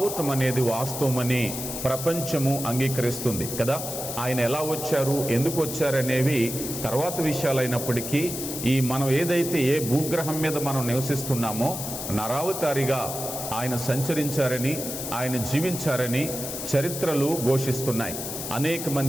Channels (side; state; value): left; noise; hiss, 6 dB below the sound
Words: అనేది వాస్తవమని ప్రపంచము అంగీకరిస్తుంది కదా. ఆయన ఎలా వచ్చారు, ఎందుకు వచ్చారనేవి తర్వాత విషయాలైనప్పటికీ, ఈ మనం ఏదైతే ఏ భూగ్రహం మీద మనం నివసిస్తున్నామో నరావతారిగా ఆయన సంచరించారని, ఆయన జీవించారని చరిత్రలు ఘోషిస్తున్నాయి. అనేక